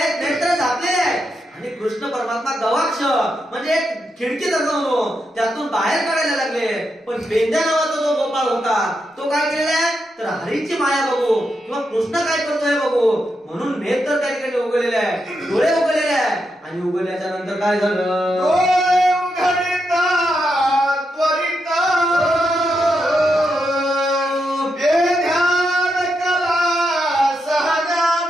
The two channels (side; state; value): both; normal; correlation 0.84